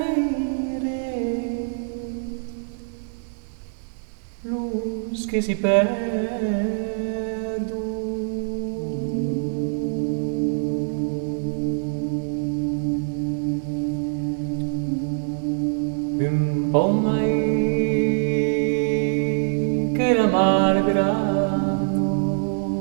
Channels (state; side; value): silent; left; 61 dB below the other